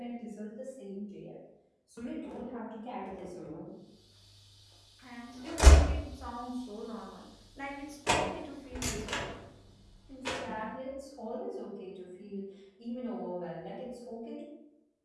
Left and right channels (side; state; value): both; identical; correlation 1.00